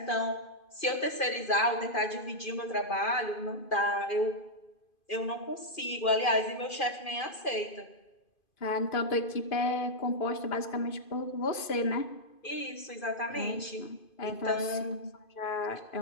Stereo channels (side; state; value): right; late; 2.5 ms